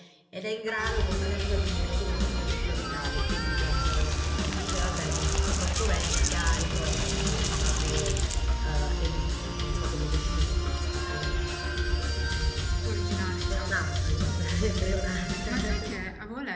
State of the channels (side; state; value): both; identical; correlation 1.00